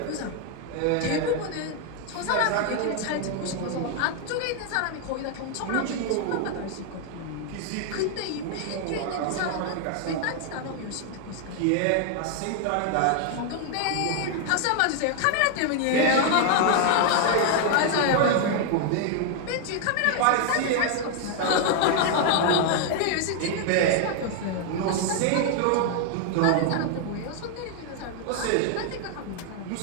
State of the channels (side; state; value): both; different; correlation 0.00